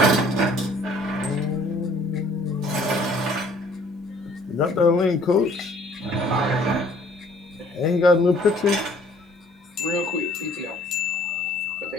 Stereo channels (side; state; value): both; normal; correlation 0.58